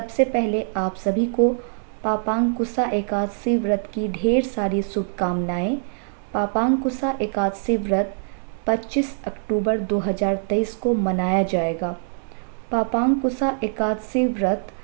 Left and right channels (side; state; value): left; silent; digital silence